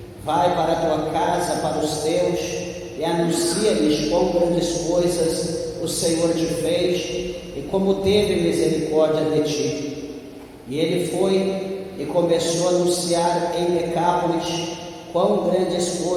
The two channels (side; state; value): both; identical; correlation 1.00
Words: Vai para a tua casa, para os teus, e anuncia-lhes quão grandes coisas o Senhor te fez e como teve misericórdia de ti. E ele foi e começou a anunciar em Decápolis quão grandes